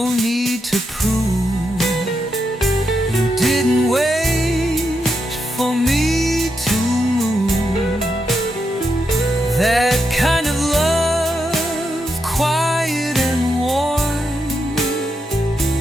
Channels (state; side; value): normal; both; correlation 0.84